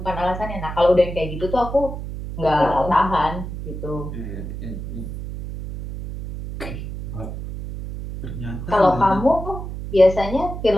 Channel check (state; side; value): noise; right; hum, 8 dB below the sound